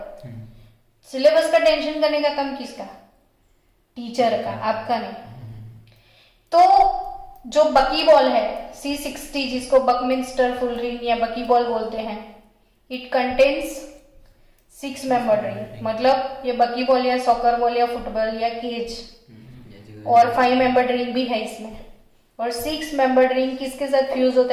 सिलेबस का टेंशन करने का काम किसका? टीचर का, आपका नहीं। तो जो बकी बॉल है C60, जिसको बकमिंस्टर फुलरिन या बकी बॉल बोलते हैं, इट कंटेन्स 6 membered ring। मतलब ये बकी बॉल या सॉकर बॉल या फुटबॉल या केज, और 5 membered ring भी है इसमें। और 6 membered ring किसके साथ फ्यूज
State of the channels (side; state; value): both; identical; correlation 1.00